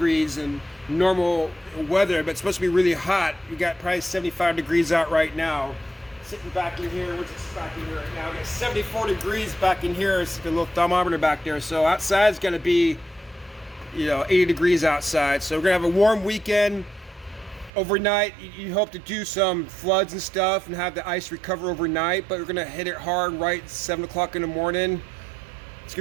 in normal weather, but it's supposed to be really hot. We got probably 75 degrees out right now. Sitting back in here, what's it back in here right now? We got 74 degrees back in here. It's a little thermometer back there. So outside is going to be, you know, 80 degrees outside. So we're going to have a warm weekend. Overnight, you hope to do some floods and stuff and have the ice recover overnight, but we're going to hit it hard right at 7 o'clock in the morning. It's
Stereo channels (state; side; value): drops out; left; at 17.7 s